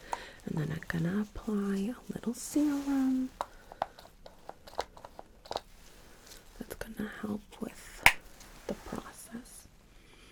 and then I'm gonna apply a little serum that's gonna help with the process.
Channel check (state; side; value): identical; both; correlation 1.00